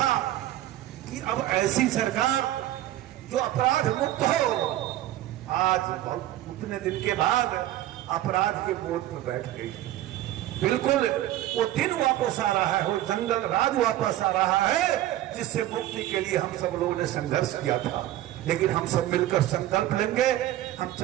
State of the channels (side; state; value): left; quieter; 14.1 dB